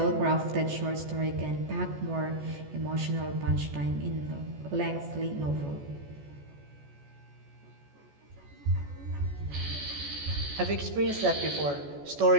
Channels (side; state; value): left; late; 14 ms